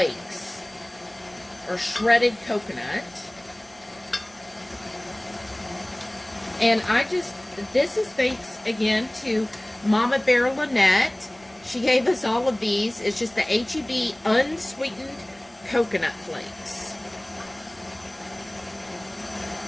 or shredded coconut. And this is thanks again to Mama Bear Lynette. She gave us all of these. It's just the H-E-B unsweetened coconut flakes.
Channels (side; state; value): right; noise; rumble, 30 dB below the sound